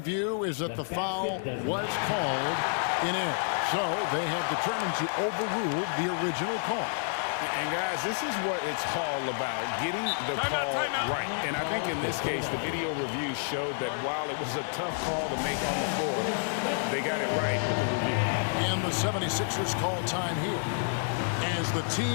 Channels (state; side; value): silent; right; digital silence